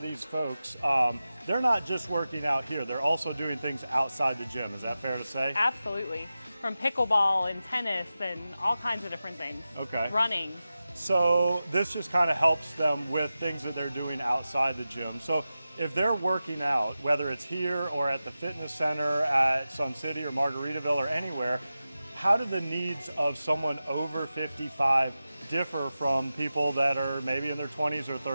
these folks, they're not just working out here, they're also doing things outside the gym. Is that fair to say? Absolutely. From pickleball and tennis and all kinds of different things. Okay. Running. So this just kind of helps them with things that they're doing outside the gym. So if they're working out, whether it's here or at the fitness center at Sun City or Margaritaville or anywhere, how do the needs of someone over 55 differ from people that are maybe in their 20s or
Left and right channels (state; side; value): inverted; both; correlation -0.93